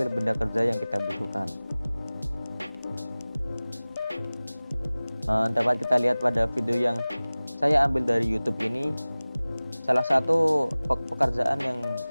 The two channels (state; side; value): inverted; both; correlation -0.98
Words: benda kerja yang kita butuhkan. Dapat kita lihat pada video yang saya ambil dari YouTube ini, salah satu pekerjaan yang